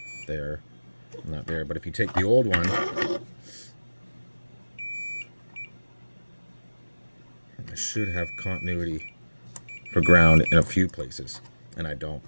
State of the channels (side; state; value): both; inverted; correlation -1.00